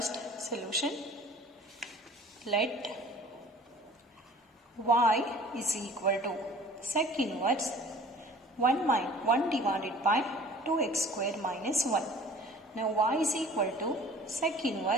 solution. Let y is equal to sec inverse 1 divided by 2x square minus 1. Now y is equal to sec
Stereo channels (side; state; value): both; normal; correlation 0.47